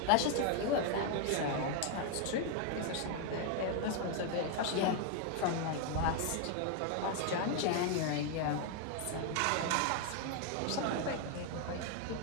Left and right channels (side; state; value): both; different; correlation 0.01